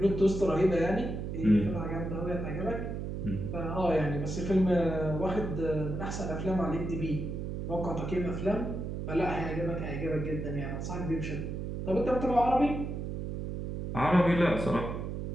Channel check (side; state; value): right; noise; hum, 4 dB below the sound